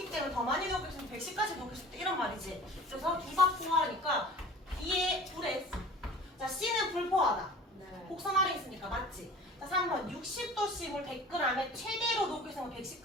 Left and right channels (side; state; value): both; normal; correlation 0.43